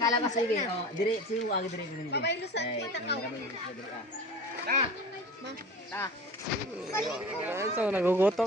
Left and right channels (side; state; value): both; normal; correlation 0.37